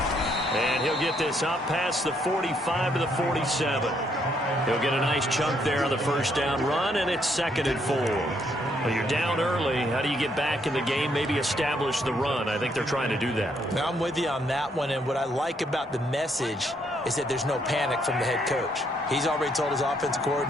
And he'll get this up past the 45 to the 47. He'll get a nice chunk there on the first down run, and it's 2nd and 4. Well, you're down early. How do you get back in the game, maybe establish the run? I think they're trying to do that. Now, I'm with you on that one, and what I like about the message is that there's no panic from the head coach. He's already told his offensive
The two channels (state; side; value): normal; both; correlation 0.72